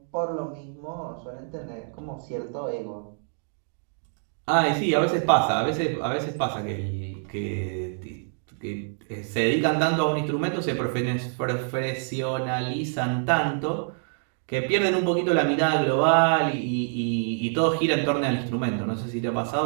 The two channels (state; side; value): silent; left; 61 dB below the other